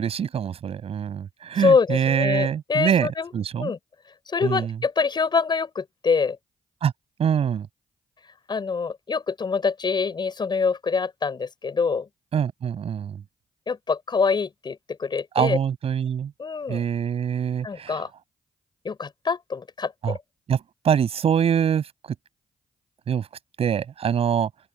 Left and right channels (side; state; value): both; normal; correlation 0.55